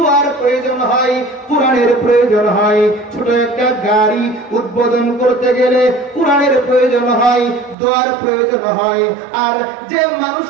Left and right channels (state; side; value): drops out; left; at 7.8 s